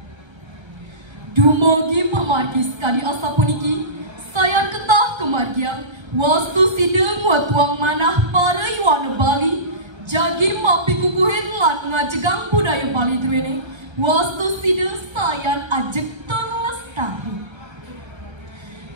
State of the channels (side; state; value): left; late; 1.3 ms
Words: Dumogi pemargi sekali asa puniki, sayan ketah kemargian, wastu sideng watuang manah para iwana Bali, jagi mapi kukuhin lan ngajegang budaya Bali duene, wastu sideng sayan ajek terlestari.